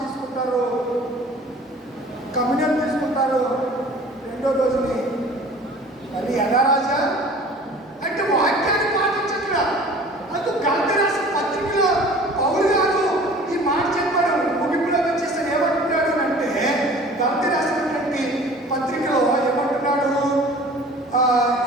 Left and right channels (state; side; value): normal; both; correlation 0.46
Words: కమ్యూనియన్ తీసుకుంటారు, రెండో రోజుని మళ్ళీ యథారాజా అంటే వాక్యాన్ని పాటించట్లా. అందుకు గలతీ రాసిన పత్రికలో పౌలు గారు ఈ మాట చెప్పాడు. ముగింపులో వచ్చేసి ఏమంటున్నాడు అంటే గలతీ రాసినటువంటి పత్రికలో ఏమంటున్నాడు?